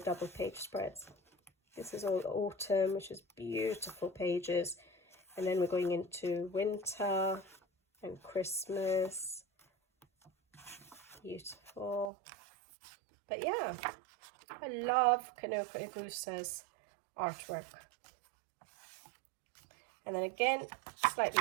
page spreads. This is all autumn, which is beautiful pages. And then we're going into winter and Christmas. Beautiful. But yeah, I love Kanoko Gusa's artwork. And then again, slightly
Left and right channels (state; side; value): drops out; left; at 12.1 s